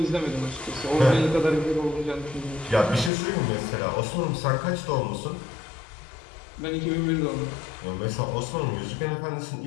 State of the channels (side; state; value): right; drops out; at 3.1 s